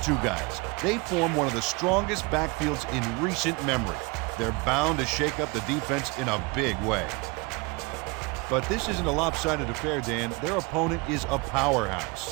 guys. They form one of the strongest backfields in recent memory. They're bound to shake up the defense in a big way. But this isn't a lopsided affair, Dan. Their opponent is a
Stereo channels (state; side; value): quieter; left; 27.0 dB